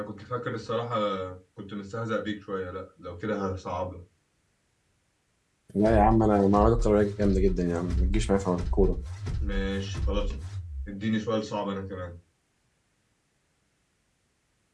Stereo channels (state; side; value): identical; both; correlation 1.00